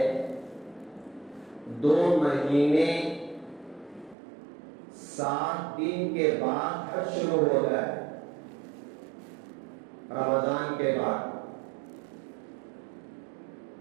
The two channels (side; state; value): left; drops out; at 4.2 s